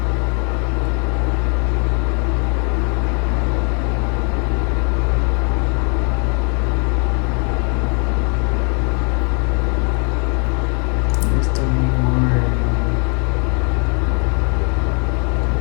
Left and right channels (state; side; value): quieter; right; 37.7 dB